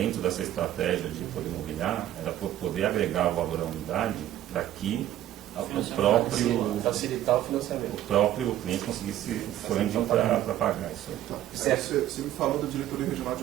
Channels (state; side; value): quieter; left; 12.7 dB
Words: dessa estratégia de poder mobiliar, era poder agregar o valor à unidade para que o próprio facilitar o financiamento. O próprio cliente conseguisse o funding para pagar isso aí. Tá. Você me falou da diretoria regional